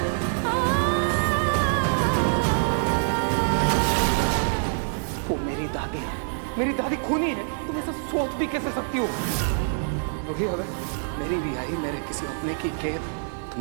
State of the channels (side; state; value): left; silent; digital silence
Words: वो मेरी दादी है, मेरी दादी खूनी है। तुम ऐसा सोच भी कैसे सकती हो? रूही, अगर मेरी रिहाई मेरे किसी अपने की कैद, तो